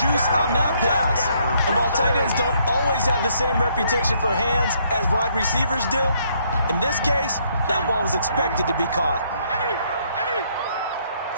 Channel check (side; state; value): both; inverted; correlation -0.69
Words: on that pass. And while tight ends don't always have the same reputation for hands as wide receivers do, in this case, that ball was expected to be caught.